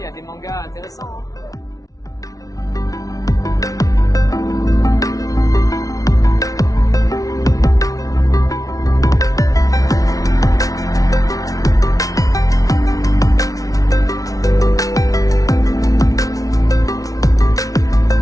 y a des mangas intéressants. Hein.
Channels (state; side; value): late; right; 0.17 ms